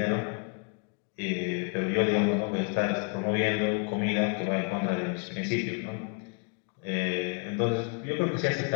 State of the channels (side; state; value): right; quieter; 37.6 dB